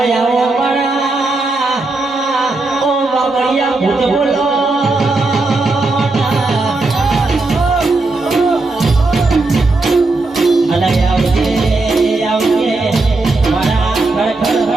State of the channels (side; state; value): left; quieter; 3.3 dB